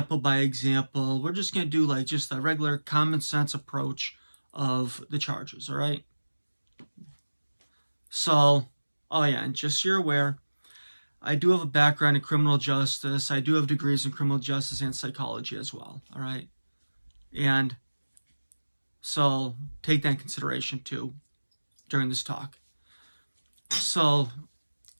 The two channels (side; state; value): both; inverted; correlation -1.00